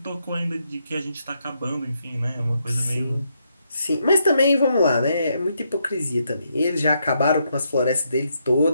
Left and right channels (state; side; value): inverted; both; correlation -0.78